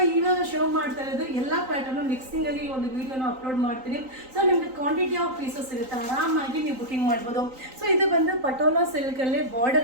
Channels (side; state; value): left; late; 3.9 ms